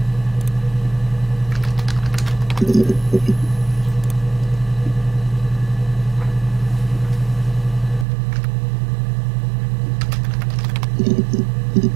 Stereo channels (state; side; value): drops out; left; at 8.1 s